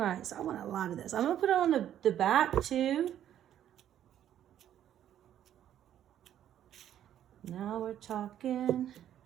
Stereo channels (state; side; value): quieter; left; 10.9 dB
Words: so I want a lot of this. I'm gonna put it on the back too. Now we're talking.